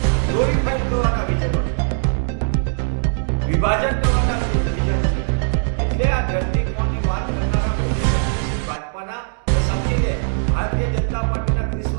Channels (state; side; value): silent; left; digital silence